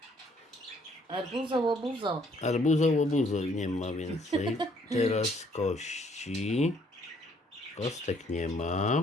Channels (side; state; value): both; normal; correlation 0.65